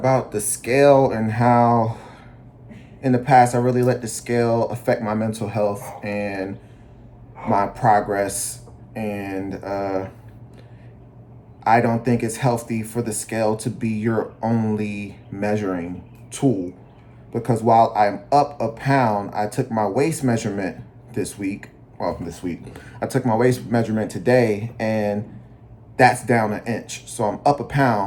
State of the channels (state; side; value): identical; both; correlation 1.00